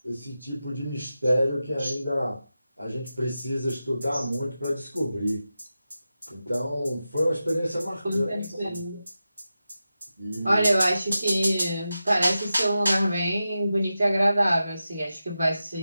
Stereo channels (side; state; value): both; inverted; correlation -0.91